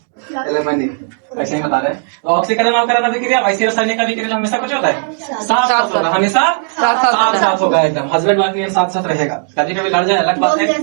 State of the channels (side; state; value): left; silent; digital silence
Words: एलिमनी, ऐसे ही बता रहे। तो ऑक्सीकरण अवकरण अभिक्रिया वैसी रासायनिक अभिक्रिया हमेशा कुछ होता है साथ साथ होगा, हमेशा साथ साथ होगा, एकदम हस्बैंड वाइफ ये साथ साथ रहेगा। कभी कभी लड़ जाए अलग बात है।